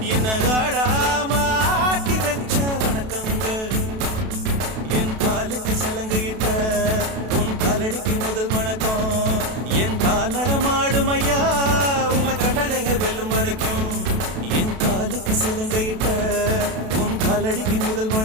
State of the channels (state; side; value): late; left; 32 ms